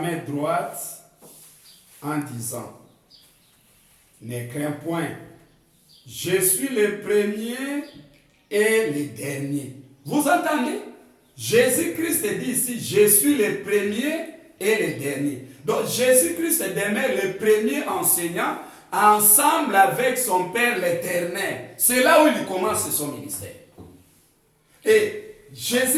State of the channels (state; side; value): identical; both; correlation 1.00